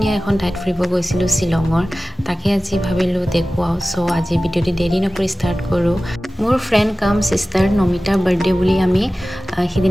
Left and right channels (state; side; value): normal; both; correlation 0.96